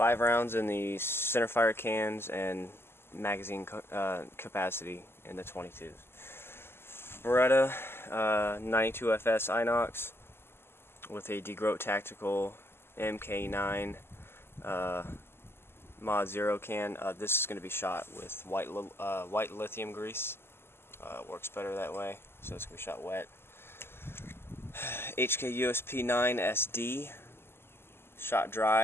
rounds in the centerfire cans and magazine capacity in the 22s. Beretta 92FS Inox with a DeGroat Tactical MK9 Mod 0 can. This is going to be shot with white lithium grease. Works better that way, so it's going to be shot wet. HK USP 9 SD, shot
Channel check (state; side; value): late; right; 0.12 ms